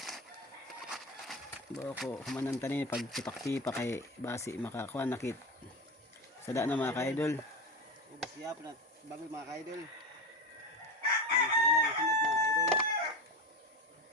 Bako humanan tanin pag tipak-tipak kay basi makakuha nakit sada na mga ka-idol. Ubos yap na bagol mga ka-idol. Ano sa ilang sunod mga ka-idol.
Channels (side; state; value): both; normal; correlation 0.22